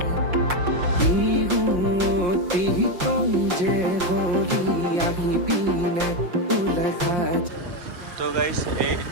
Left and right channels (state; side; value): late; left; 5.6 ms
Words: তো গাইজ এই